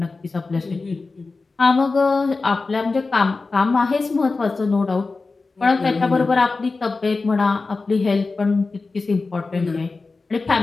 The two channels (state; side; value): quieter; right; 3.9 dB